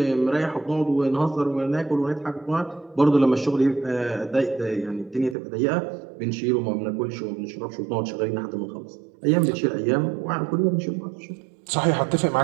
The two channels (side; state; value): left; drops out; at 5.4 s